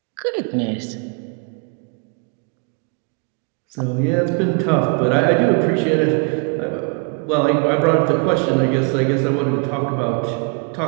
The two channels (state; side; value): quieter; left; 37.1 dB